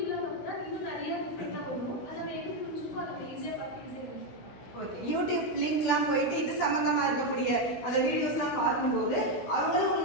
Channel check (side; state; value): right; late; 16 ms